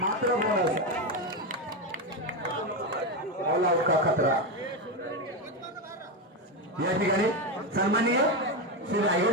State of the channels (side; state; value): both; normal; correlation 0.11